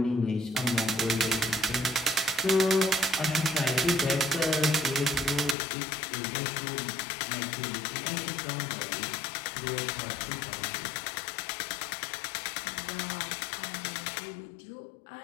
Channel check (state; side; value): drops out; right; at 5.6 s